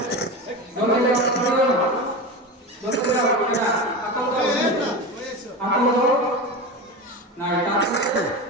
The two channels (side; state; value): both; normal; correlation 0.25